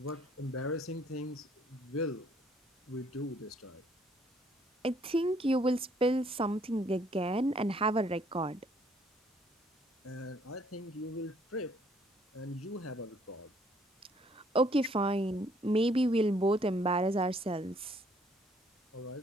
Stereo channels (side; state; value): both; normal; correlation 0.64